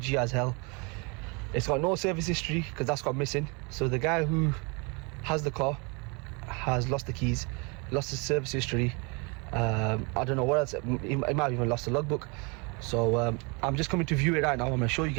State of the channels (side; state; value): left; quieter; 30.9 dB